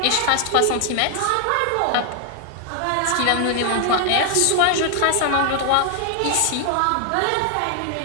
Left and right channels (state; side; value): different; both; correlation 0.00